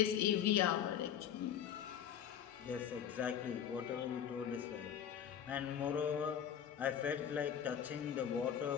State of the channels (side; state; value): right; quieter; 9.1 dB